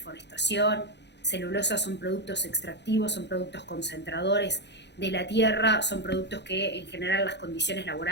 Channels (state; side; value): late; right; 0.50 ms